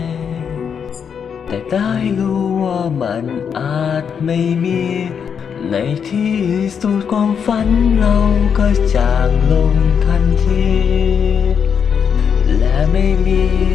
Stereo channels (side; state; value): right; quieter; 7.1 dB